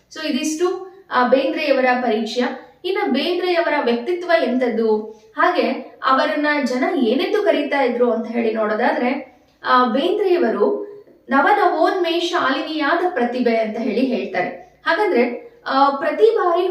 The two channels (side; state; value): both; identical; correlation 1.00